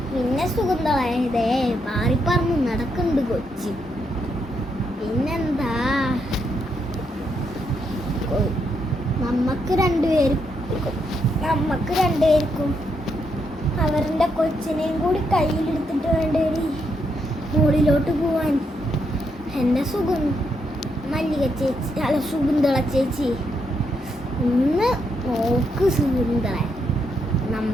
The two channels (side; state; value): both; normal; correlation 0.79